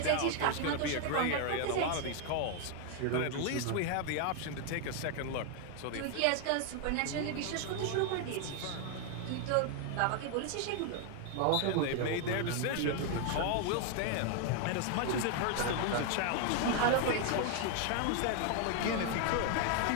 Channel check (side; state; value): both; different; correlation 0.01